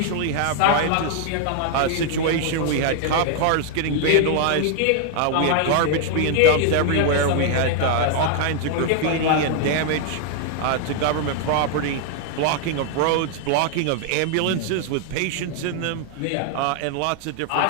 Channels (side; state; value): both; different; correlation 0.00